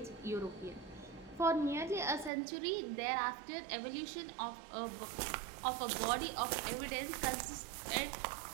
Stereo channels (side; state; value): left; drops out; at 2.3 s